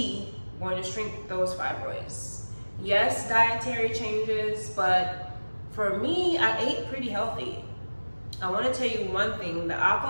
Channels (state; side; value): inverted; both; correlation -1.00